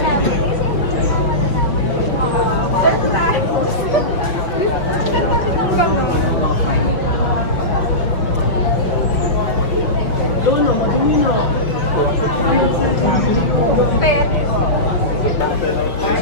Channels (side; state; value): right; late; 5.8 ms